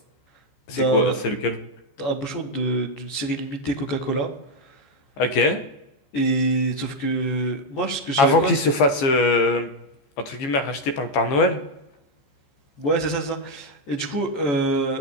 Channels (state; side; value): late; right; 15 ms